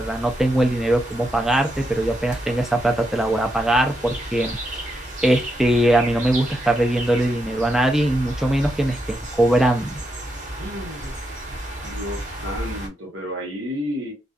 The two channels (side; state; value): both; normal; correlation 0.82